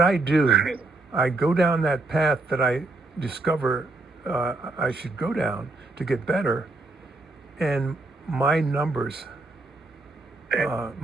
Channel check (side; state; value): left; quieter; 3.1 dB